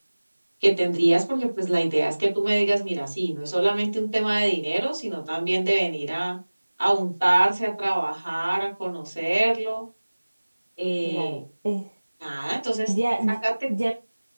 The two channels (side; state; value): both; inverted; correlation -1.00